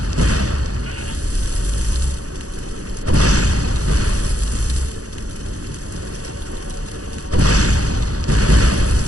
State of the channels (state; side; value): late; left; 0.67 ms